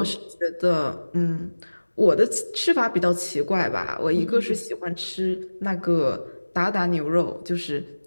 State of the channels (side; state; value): both; inverted; correlation -1.00